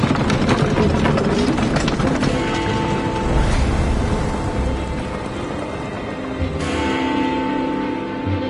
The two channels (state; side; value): identical; both; correlation 1.00